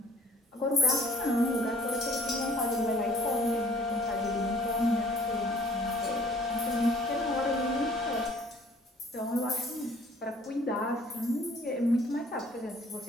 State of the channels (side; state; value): both; normal; correlation 0.56